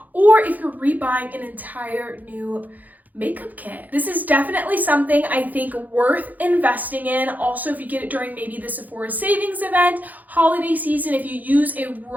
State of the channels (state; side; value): late; left; 0.082 ms